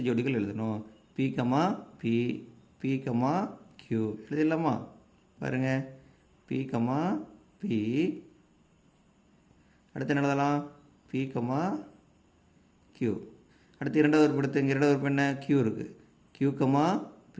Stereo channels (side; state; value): both; identical; correlation 1.00